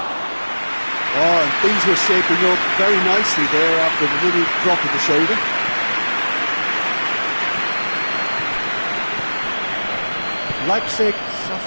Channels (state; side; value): inverted; both; correlation -1.00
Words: Oh, and things were shaping up very nicely there after the little drop of the shoulder. Leipzig